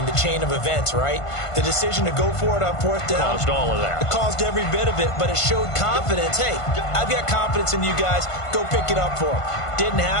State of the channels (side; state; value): right; late; 1.5 ms